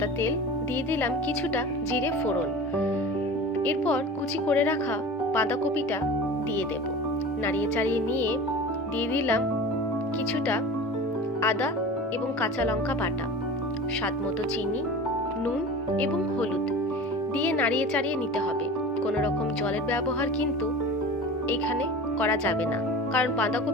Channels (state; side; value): normal; both; correlation 0.35